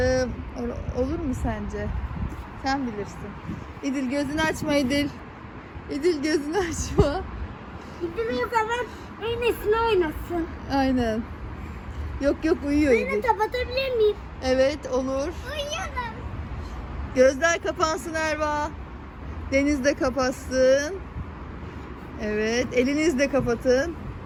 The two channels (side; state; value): both; identical; correlation 1.00